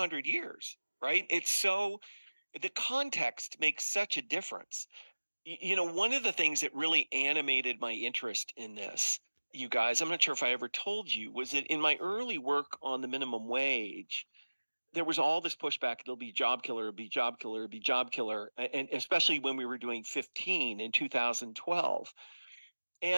years, right? It's so, the context makes such a difference. One of the things that really animated my interest in this, you guys, I'm not sure if I ever told you, was that in my early work on the minimum wage, there was all this pushback. It'll be job killer, it'll be job killer, it'll be job killer. And especially when we were doing 15 in 2012.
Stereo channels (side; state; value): both; inverted; correlation -1.00